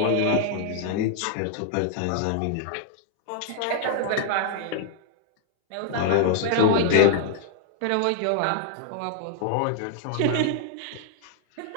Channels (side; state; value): both; different; correlation -0.01